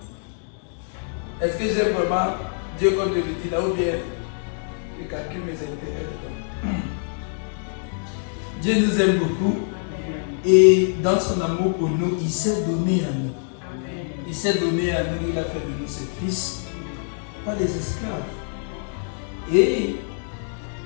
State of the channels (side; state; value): right; silent; digital silence